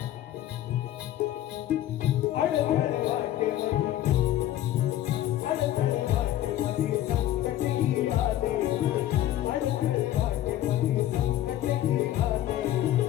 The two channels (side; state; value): right; quieter; 13.0 dB